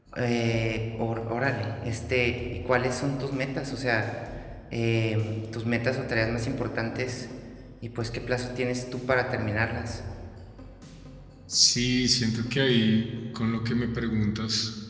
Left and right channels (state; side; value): identical; both; correlation 1.00